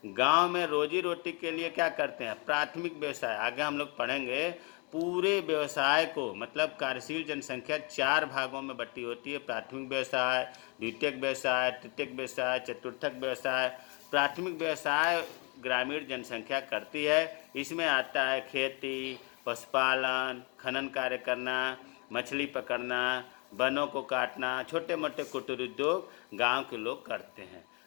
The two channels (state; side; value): quieter; right; 31.4 dB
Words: गांव में रोजी रोटी के लिए क्या करते हैं, प्राथमिक व्यवसाय। आगे हम लोग पढ़ेंगे पूरे व्यवसाय को, मतलब कार्यशील जनसंख्या 4 भागों में बटी होती है। प्राथमिक व्यवसाय, द्वितीयक व्यवसाय, तृतीयक व्यवसाय, चतुर्थक व्यवसाय। प्राथमिक व्यवसाय ग्रामीण जनसंख्या करती है। इसमें आता है खेती, पशुपालन, खनन कार्य करना, मछली पकड़ना, वनों को काटना, छोटे मोटे कुटीर उद्योग गांव के लोग करते हैं।